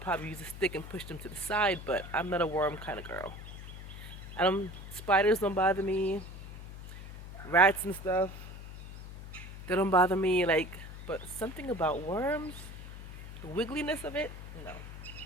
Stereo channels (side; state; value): left; noise; hum, 12 dB below the sound